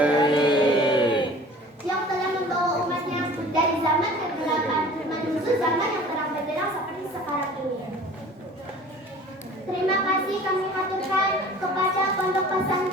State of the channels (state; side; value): normal; both; correlation 0.45